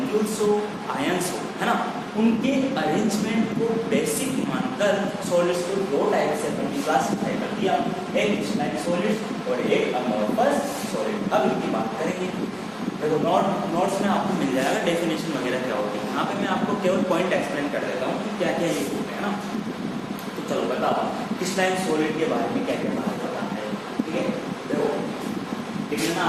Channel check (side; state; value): both; identical; correlation 1.00